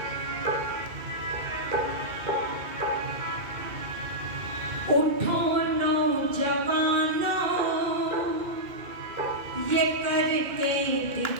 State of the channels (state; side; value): late; left; 2.1 ms